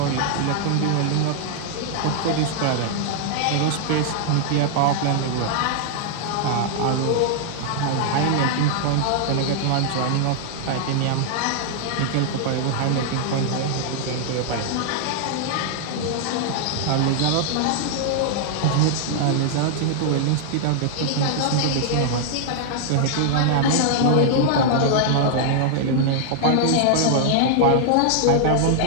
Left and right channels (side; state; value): both; different; correlation -0.01